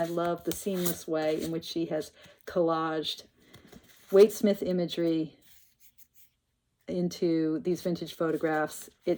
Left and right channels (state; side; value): identical; both; correlation 1.00